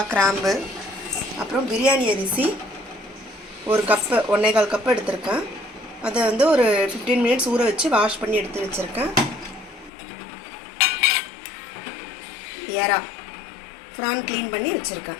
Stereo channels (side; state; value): right; drops out; at 9.9 s